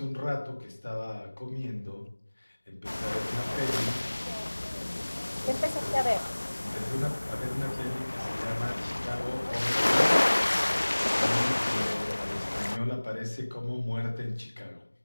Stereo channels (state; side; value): inverted; both; correlation -1.00